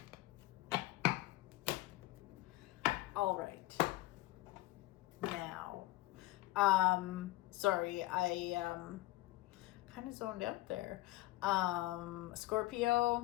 All right. Now, sorry, I kind of zoned out there.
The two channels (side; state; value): right; quieter; 18.0 dB